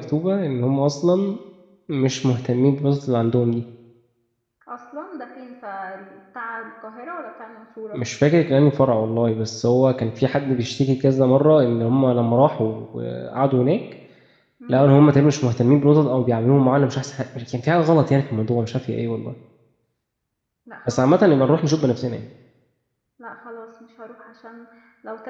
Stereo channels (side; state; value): both; identical; correlation 1.00